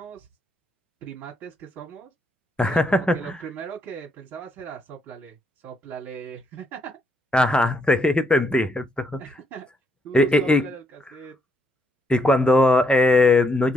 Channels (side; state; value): both; normal; correlation 0.75